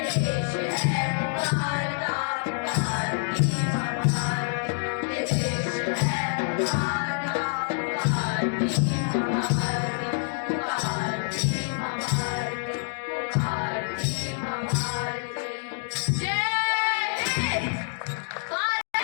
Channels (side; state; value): right; silent; digital silence